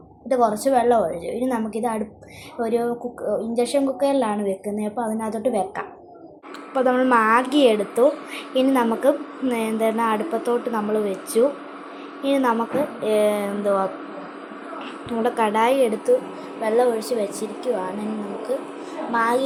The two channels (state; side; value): identical; both; correlation 1.00